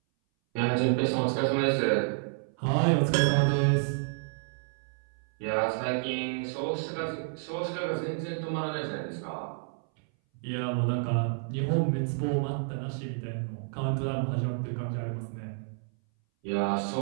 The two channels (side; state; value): left; silent; 58 dB below the other